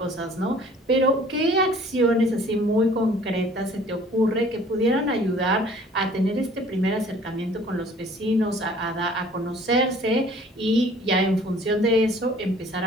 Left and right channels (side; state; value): both; normal; correlation 0.52